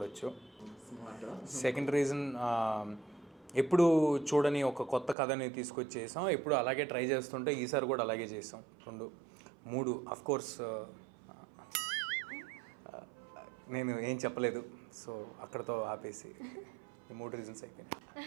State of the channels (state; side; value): drops out; left; at 5.2 s